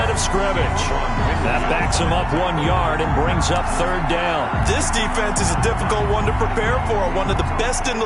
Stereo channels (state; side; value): identical; both; correlation 1.00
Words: of scrimmage. That backs him up 1 yard and brings up 3rd down. This defense is a difficult one to prepare for, one of the best in the